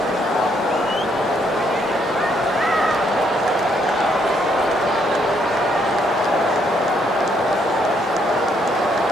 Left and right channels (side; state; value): both; normal; correlation 0.72